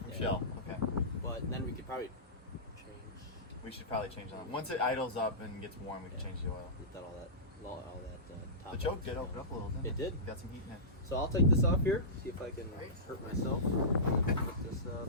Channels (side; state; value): both; normal; correlation -0.20